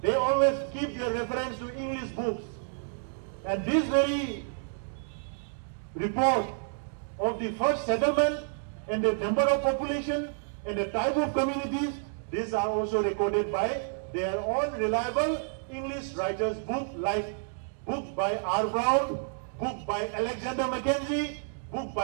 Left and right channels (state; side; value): silent; left; digital silence